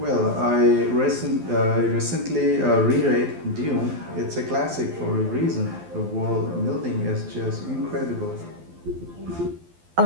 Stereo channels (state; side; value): late; left; 12 ms